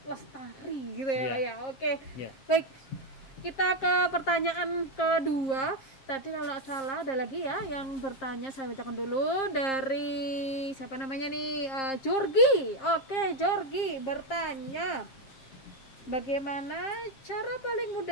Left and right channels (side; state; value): right; late; 7.5 ms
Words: lestari gitu ya Pak ya. Oke. Ya. Baik, kita ke pertanyaan kedua. Tadi kalau nggak salah ada lagi ya yang bertanya, saya bacakan dulu dari siapa namanya nih, Jorgi. Oke, Jorgi bertanya, bagaimana cara paling